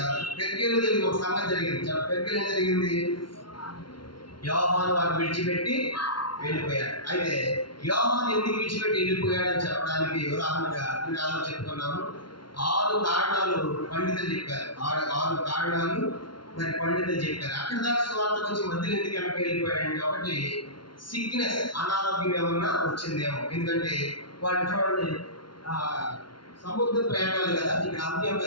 పెర్గేలో జరిగిన ఒక సంగతి జరిగింది. పెర్గేలో ఏం జరిగింది? యోహాను వారిని విడిచిపెట్టి వెళ్ళిపోయాడు. అయితే యోహాను ఎందుకు విడిచిపెట్టి వెళ్ళిపోయాడని చెప్పడానికి ఉదాహరణగా నేను చెప్పుకున్నాము. 6 కారణాలు పండితులు చెప్పారు. 6 కారణాలు మరి పండితులు చెప్పారు. అక్కడ దాకా స్వార్థకు వచ్చి మధ్యలో ఎందుకు వెనక్కి వెళ్ళిపోయాడంటే, ఒకటి సిక్నెస్, అనారోగ్యం ఏమన్నా వచ్చిందేమో. ఎందుకంటే వాడు చూడండి సముద్ర ప్రయాణాలు కదా. ఇక్కడ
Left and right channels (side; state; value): right; late; 0.72 ms